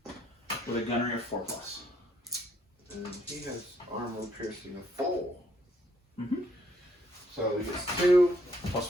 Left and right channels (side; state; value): both; normal; correlation 0.69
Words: with a gunnery of 4+. And he has armor piercing of 4. Mm-hmm. So he gets 2 Plus